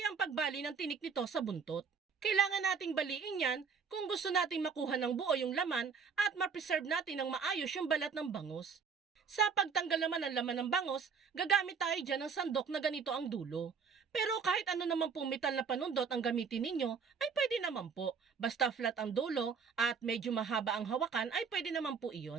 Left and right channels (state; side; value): quieter; left; 5.8 dB